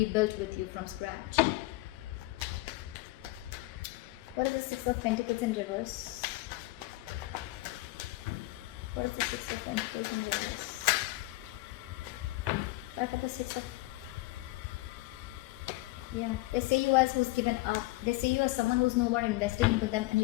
with you from scratch. What is the Six of Pentacles in reverse? What is the Six of Pentacles in reverse? For the Six of, yeah, they see you as who's given up. They see you as someone who's no more invested into them, and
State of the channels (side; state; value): right; quieter; 20.1 dB